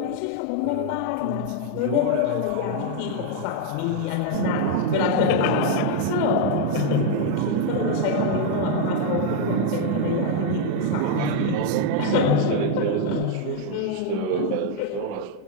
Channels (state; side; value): different; both; correlation 0.00